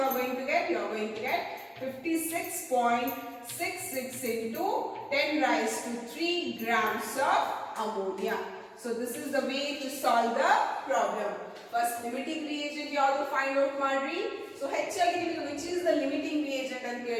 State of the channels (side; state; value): both; identical; correlation 1.00